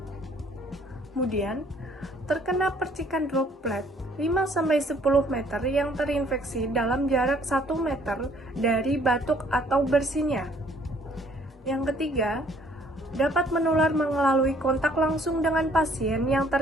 Kemudian, terkena percikan droplet 5-10 meter yang terinfeksi dalam jarak 1 meter dari batuk atau bersinnya. Yang ketiga, dapat menular melalui kontak langsung dengan pasien yang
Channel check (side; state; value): both; normal; correlation 0.61